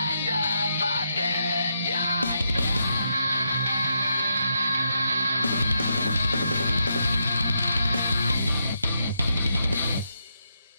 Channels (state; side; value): inverted; both; correlation -0.81